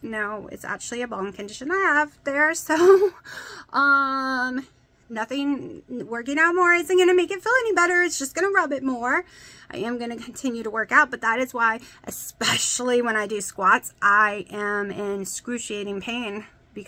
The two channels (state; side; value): identical; both; correlation 1.00